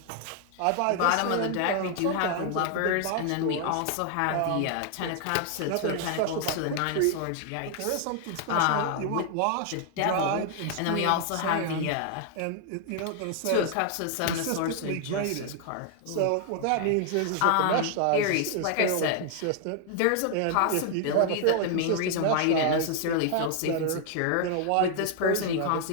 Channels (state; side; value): different; both; correlation 0.00